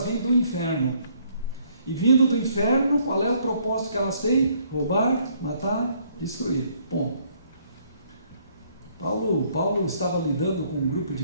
vêm do inferno. E vindo do inferno, qual é o propósito que elas têm? Roubar, matar, destruir. Ponto. Paulo estava lidando com um grupo de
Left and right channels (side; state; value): both; inverted; correlation -0.66